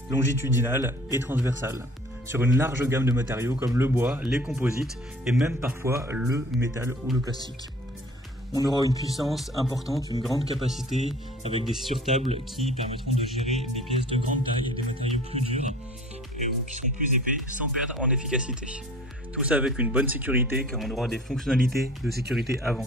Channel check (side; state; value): both; normal; correlation 0.48